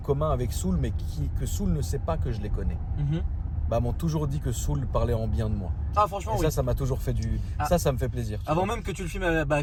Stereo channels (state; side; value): identical; both; correlation 1.00